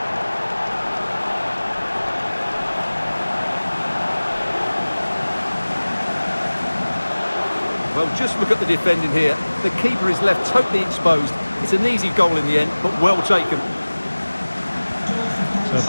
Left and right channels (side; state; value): both; inverted; correlation -1.00